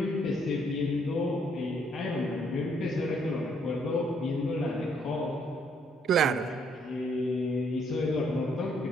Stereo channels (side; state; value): both; normal; correlation 0.69